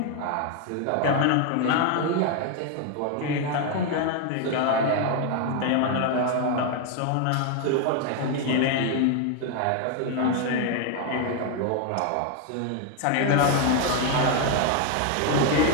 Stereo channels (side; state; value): both; different; correlation 0.01